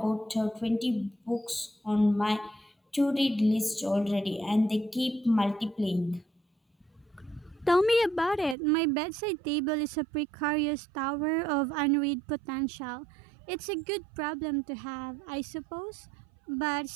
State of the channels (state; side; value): drops out; left; at 8.6 s